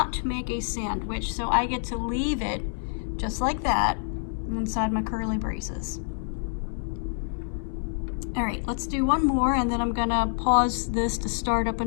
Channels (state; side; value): silent; right; 60 dB below the other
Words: make a sandwich, so I get to leave it just like that inside my curly braces. All right, let's do one more, and then I'm gonna pause this to start up